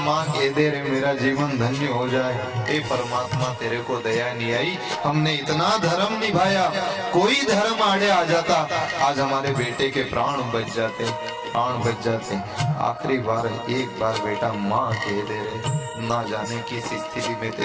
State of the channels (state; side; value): identical; both; correlation 1.00